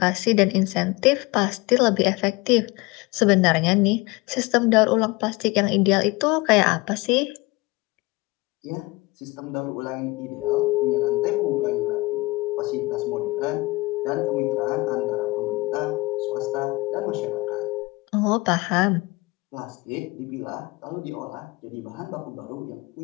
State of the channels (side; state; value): right; quieter; 23.4 dB